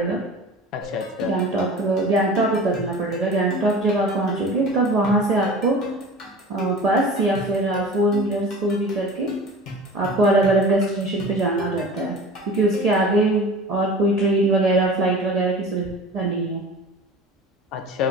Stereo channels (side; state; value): both; normal; correlation 0.38